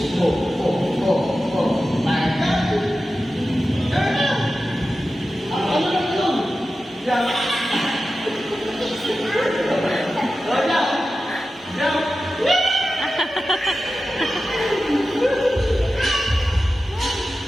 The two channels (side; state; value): both; normal; correlation 0.93